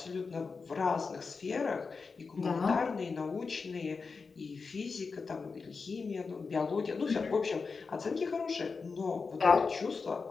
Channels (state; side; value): quieter; right; 4.7 dB